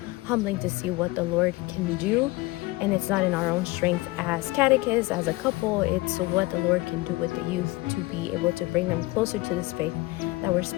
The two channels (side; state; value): right; quieter; 21.4 dB